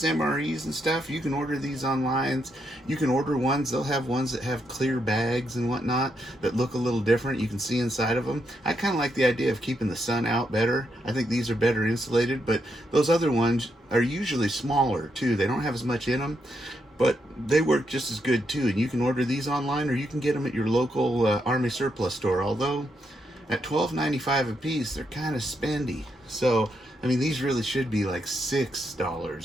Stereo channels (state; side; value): normal; both; correlation 0.80